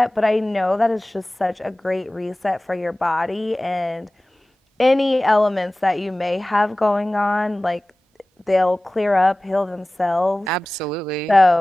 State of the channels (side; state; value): both; normal; correlation 0.98